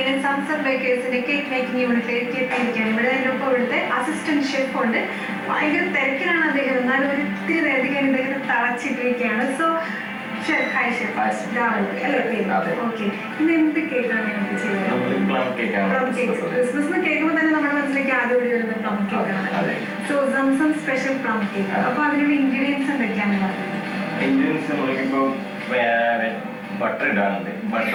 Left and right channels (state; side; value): identical; both; correlation 1.00